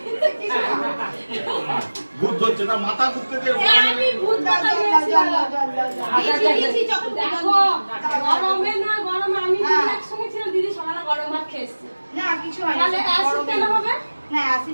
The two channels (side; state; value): both; inverted; correlation -1.00